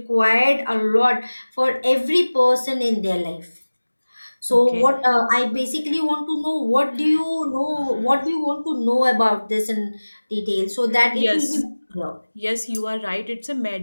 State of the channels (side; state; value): both; inverted; correlation -1.00